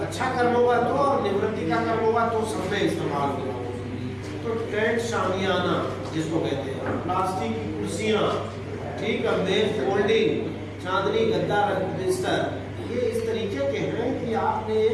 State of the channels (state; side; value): identical; both; correlation 1.00